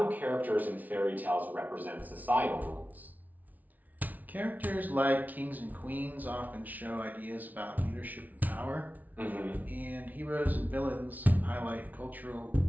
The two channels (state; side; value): late; left; 0.077 ms